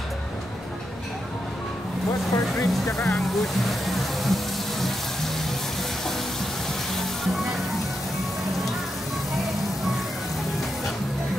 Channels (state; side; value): normal; both; correlation 0.85